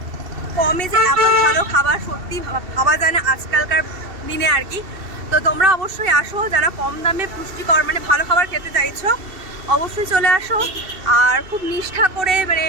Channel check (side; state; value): left; late; 2.7 ms